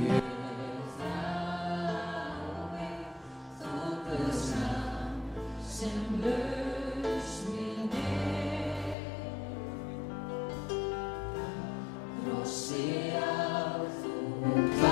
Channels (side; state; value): right; drops out; at 9.0 s